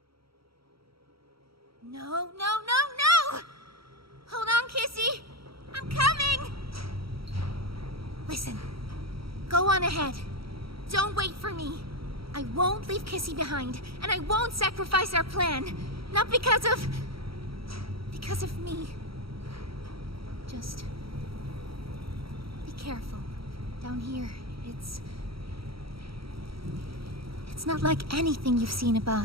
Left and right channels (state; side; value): late; left; 0.75 ms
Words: No! Hold on, Kissy! I'm coming! Listen, go on ahead. Don't wait for me. I won't leave Kissy behind, and I won't sacrifice our plan. Not because of me. Just be careful. Down here, it's not like anything you've seen